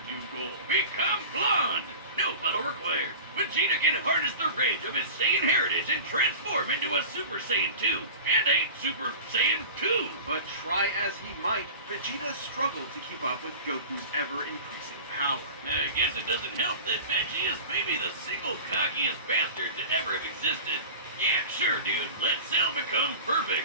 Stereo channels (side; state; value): both; inverted; correlation -0.35